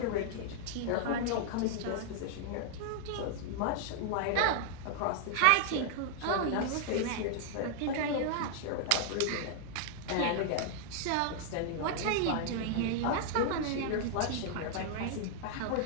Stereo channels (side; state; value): both; different; correlation -0.01